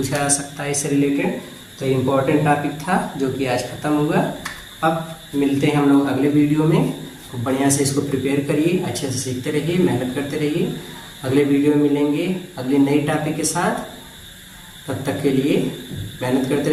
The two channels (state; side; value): identical; both; correlation 1.00